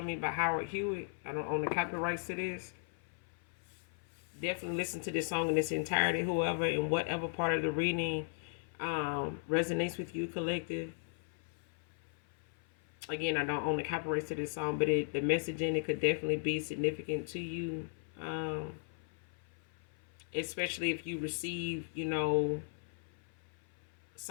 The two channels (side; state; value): right; silent; 53 dB below the other